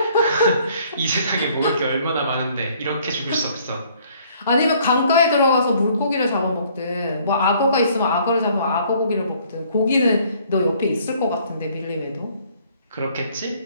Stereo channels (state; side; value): inverted; both; correlation -0.61